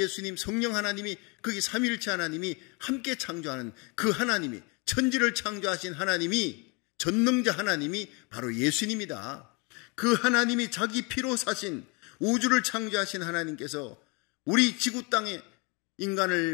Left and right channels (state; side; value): quieter; right; 30.6 dB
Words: 성령 하나님이, 거기 삼위일체 하나님이 함께 창조하는 그 하나님이, 천지를 창조하신 하나님이, 전능자 하나님이 바로 예수님이다. 그 하나님이 자기 피로 사신, 우주를 창조하신 하나님께서 우리 지구 땅에